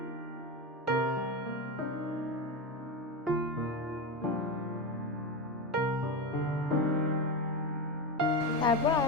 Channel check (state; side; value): normal; both; correlation 0.17